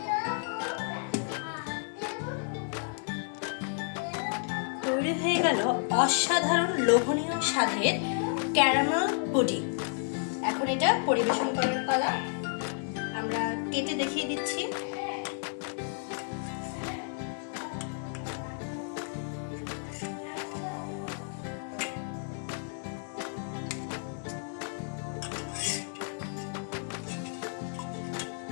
তৈরি হয়ে গেল অসাধারণ লোভনীয় স্বাদের ক্যারামেল পুডিং। এখন এটা পরিবেশন করার পালা। আমরা কেটে দেখিয়ে দিচ্ছি।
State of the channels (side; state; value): right; silent; 57 dB below the other